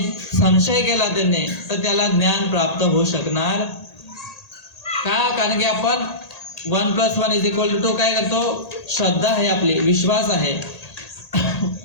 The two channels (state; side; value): late; right; 1.8 ms